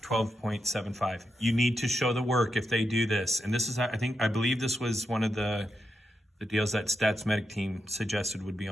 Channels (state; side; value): normal; both; correlation 0.85